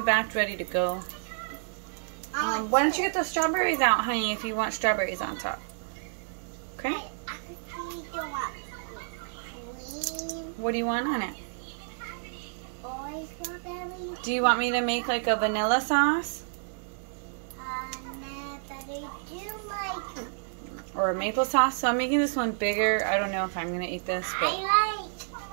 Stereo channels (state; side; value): silent; left; digital silence